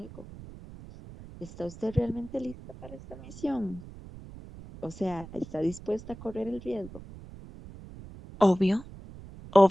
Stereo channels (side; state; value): right; noise; rumble, 16 dB below the sound